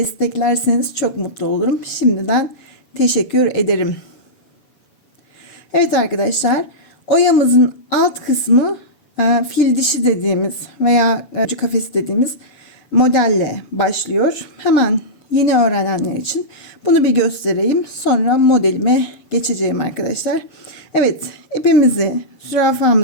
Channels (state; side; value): late; right; 7.1 ms